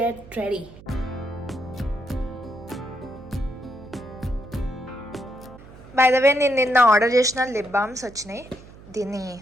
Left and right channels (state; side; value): noise; right; hum, 19 dB below the sound